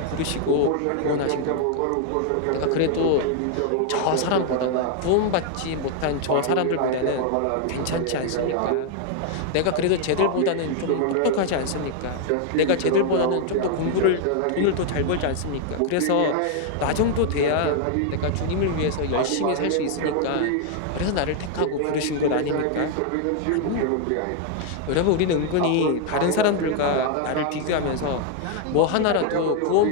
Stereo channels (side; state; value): both; different; correlation 0.00